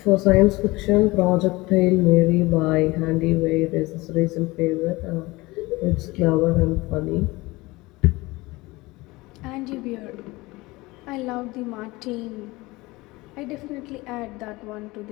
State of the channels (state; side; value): quieter; right; 21.7 dB